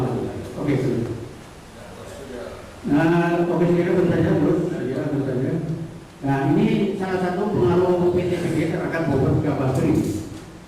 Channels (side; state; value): both; identical; correlation 1.00